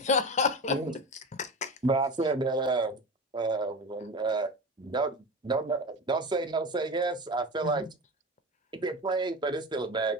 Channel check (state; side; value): normal; both; correlation 0.27